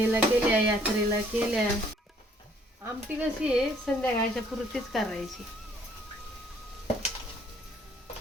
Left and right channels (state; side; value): normal; both; correlation 0.62